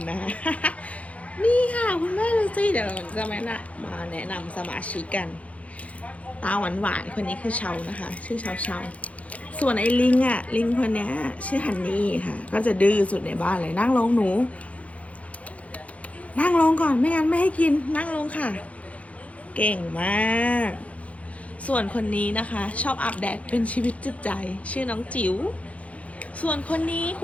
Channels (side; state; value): right; late; 0.065 ms